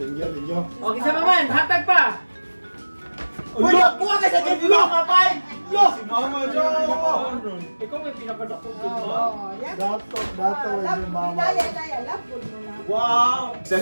Okay, sa maman. Hatag pa. Uy, buka ka sa gift mo, kapay! Yo! Si Mama John! Ikaw may pinapadako ko. Oh, yan. Dato yung mama. Daya, love good mo na. Wow!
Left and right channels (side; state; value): both; inverted; correlation -1.00